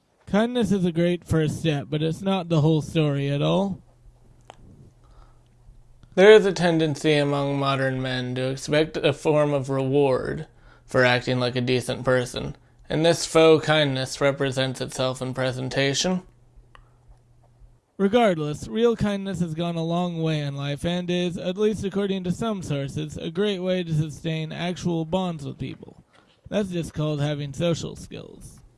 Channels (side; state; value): both; identical; correlation 1.00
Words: Kindness is a great first step, but it's not the whole story at all. There is a tendency among modern men to expect a form of reward for acting like a decent person, and this faux kindness represents itself in presentation. Regardless, real kindness has gone a long way in life and is, at least according to some sources, a great way to sustain actual bonds with people. That's just called having social skills.